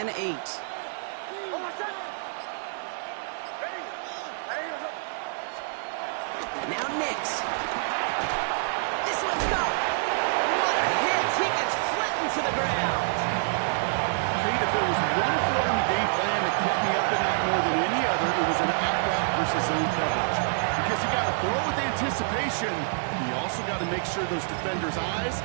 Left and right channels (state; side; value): silent; left; 60 dB below the other